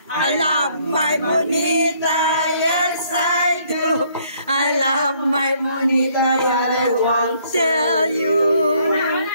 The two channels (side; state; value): both; inverted; correlation -0.65